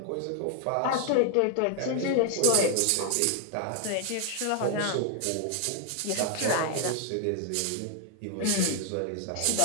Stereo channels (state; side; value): different; both; correlation 0.00